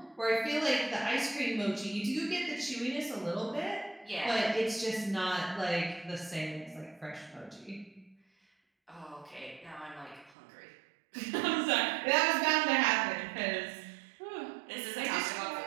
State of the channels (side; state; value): left; drops out; at 10.4 s